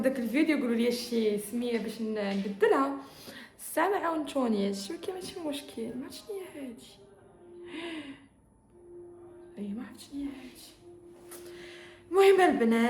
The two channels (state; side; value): identical; both; correlation 1.00